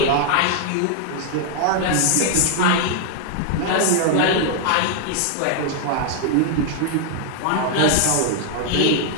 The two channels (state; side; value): different; both; correlation 0.00